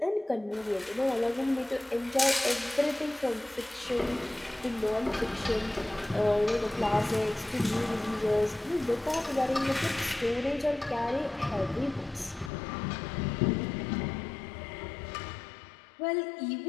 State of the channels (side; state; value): right; drops out; at 12.5 s